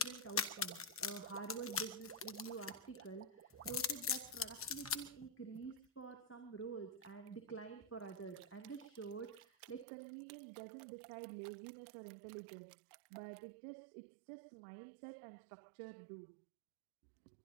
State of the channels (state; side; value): drops out; left; at 9.9 s